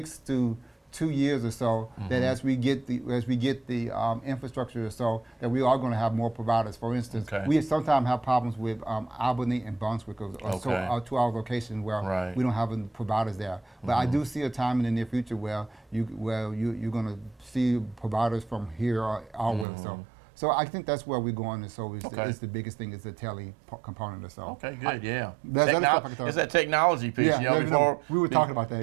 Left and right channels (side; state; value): left; drops out; at 19.7 s